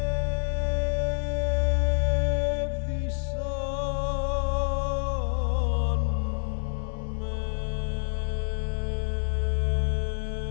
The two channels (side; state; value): right; silent; 60 dB below the other